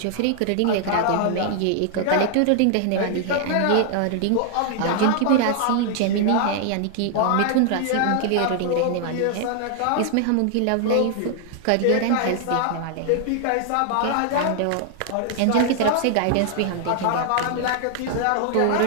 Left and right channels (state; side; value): different; both; correlation 0.00